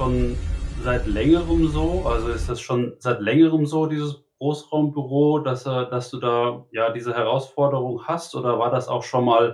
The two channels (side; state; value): both; identical; correlation 1.00